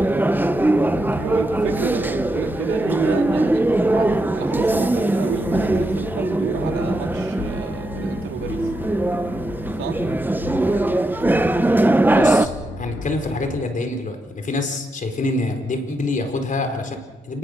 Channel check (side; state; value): both; normal; correlation 0.83